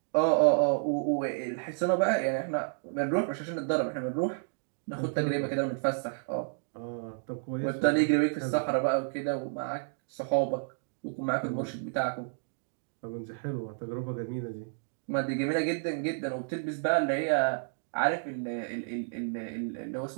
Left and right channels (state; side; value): silent; left; digital silence